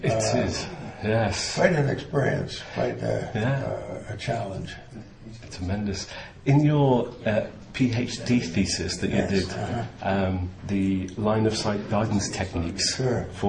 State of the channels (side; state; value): both; identical; correlation 1.00